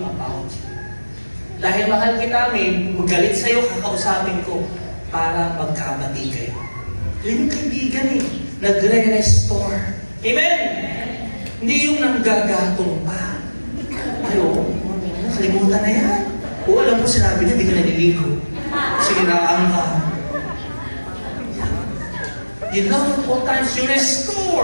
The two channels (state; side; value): inverted; both; correlation -1.00